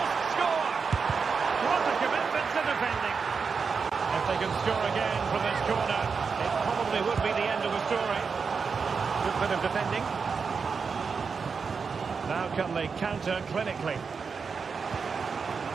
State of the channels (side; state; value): left; quieter; 5.4 dB